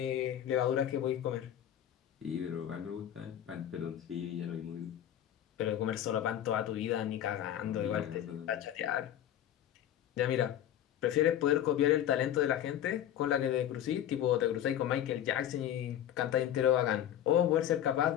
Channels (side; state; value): right; quieter; 11.1 dB